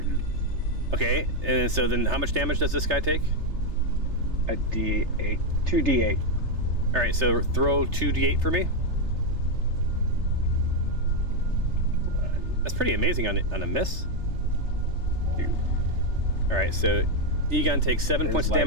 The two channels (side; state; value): left; late; 3.3 ms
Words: Okay, and so then how much damage does this guy take? A d8, 2d8. All right, so throw 2d8 for me. That's pretty amazing on a miss. 2. All right, so Egon takes 7 points of